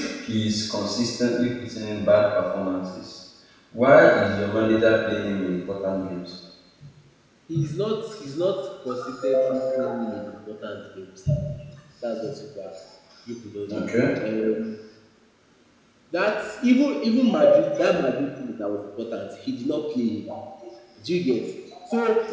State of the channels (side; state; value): both; identical; correlation 1.00